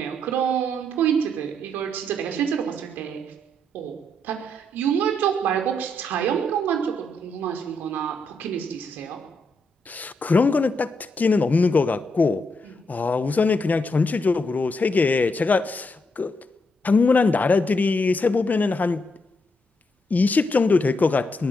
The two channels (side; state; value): both; normal; correlation 0.79